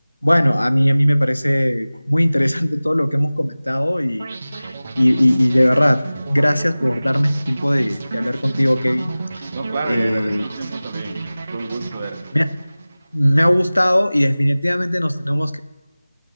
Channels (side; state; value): both; inverted; correlation -0.98